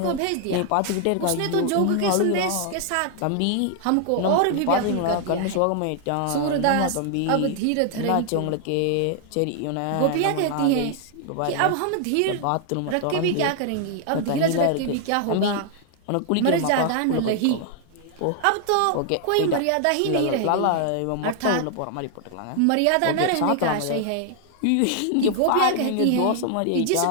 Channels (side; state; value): both; different; correlation 0.00